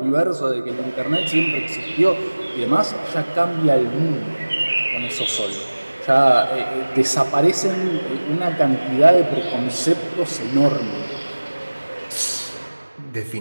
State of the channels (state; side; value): inverted; both; correlation -1.00